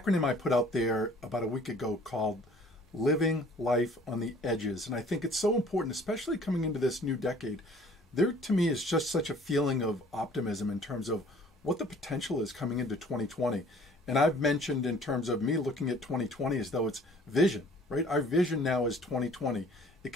I put out there about a week ago called Living Life on the Edges. And I think it's so important, especially coming into this new decade. There, to me, is just such a feeling of optimism in terms of what the potential is coming into 2020. And I've mentioned in terms of me looking at 2020 as though it's vision, right? Our vision now is 2020. It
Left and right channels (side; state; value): both; normal; correlation 0.53